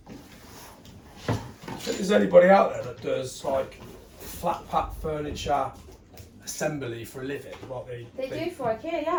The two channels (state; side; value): identical; both; correlation 1.00